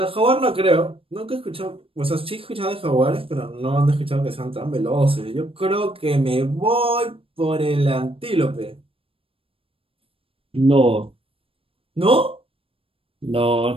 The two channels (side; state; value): left; late; 0.27 ms